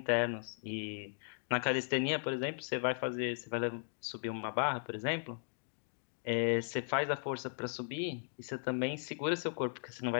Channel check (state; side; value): silent; right; digital silence